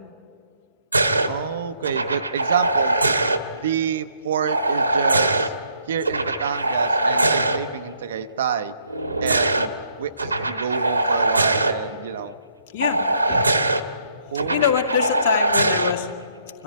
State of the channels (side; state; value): both; inverted; correlation -0.70